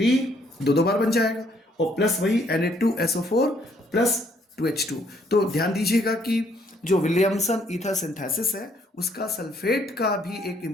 दो बार बन जाएगा, और प्लस वही Na2SO4 प्लस 2H2। तो ध्यान दीजिएगा कि जो विलियमसन ईथर सिंथेसिस है उसका सल्फेट का भी एक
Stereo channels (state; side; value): normal; both; correlation 0.67